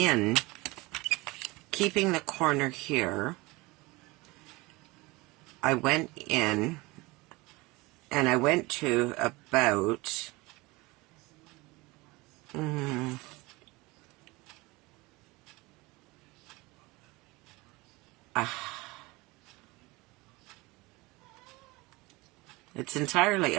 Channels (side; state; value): left; quieter; 23.0 dB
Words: keeping the corner here. I went in and I went to about it's entirely